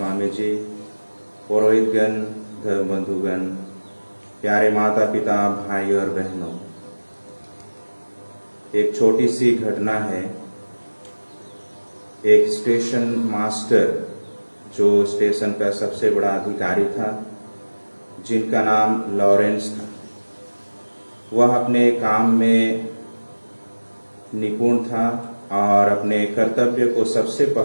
जी, पुरोहितगण, धर्म बंधुगण, प्यारे माता पिता, भाई और बहनों, एक छोटी सी घटना है। एक स्टेशन मास्टर, जो स्टेशन का सबसे बड़ा अधिकारी था, जिनका नाम लॉरेंस था, वह अपने काम में निपुण था और अपने कर्तव्य को सबसे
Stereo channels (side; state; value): both; inverted; correlation -1.00